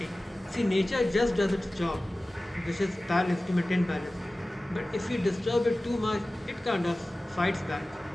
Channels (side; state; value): both; normal; correlation 0.97